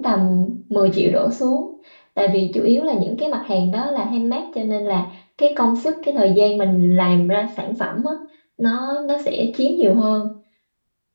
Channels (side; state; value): both; inverted; correlation -1.00